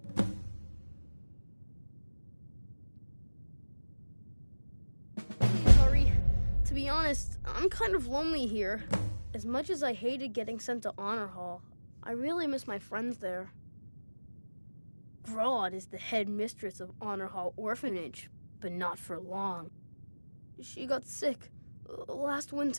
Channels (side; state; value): both; inverted; correlation -1.00